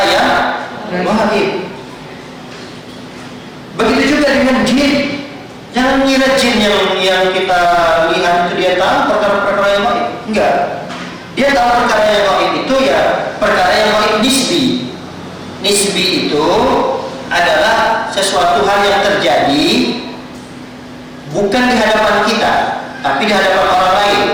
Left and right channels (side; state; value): both; identical; correlation 1.00